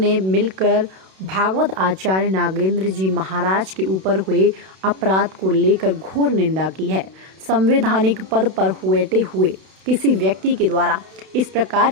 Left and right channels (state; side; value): late; left; 32 ms